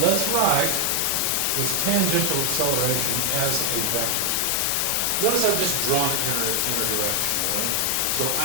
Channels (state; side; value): different; both; correlation 0.00